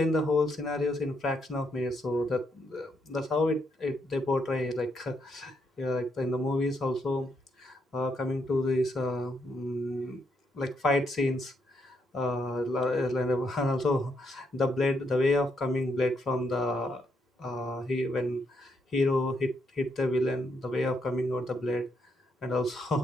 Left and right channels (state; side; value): normal; both; correlation 0.77